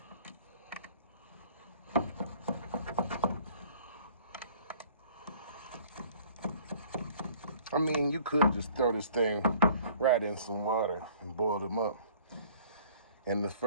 I mean, you could just throw this thing right in some water and boil them up, and the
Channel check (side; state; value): both; inverted; correlation -0.54